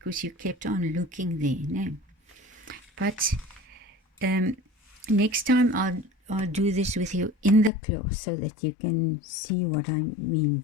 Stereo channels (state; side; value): drops out; right; at 7.7 s